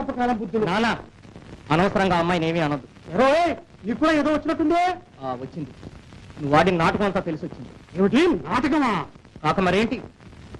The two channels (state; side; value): identical; both; correlation 1.00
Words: బుద్ధులు. నానా, అనవసరంగా అమ్మాయిని ఏమీ అనొద్దు. నీకు కూడా ఏదో వచ్చినట్టుందే. వచ్చింది. నువ్వు వాడిన నాటకం అంతా తెలిసి వచ్చింది. ఏమిటి నాటకమా? కాక మరేంటి?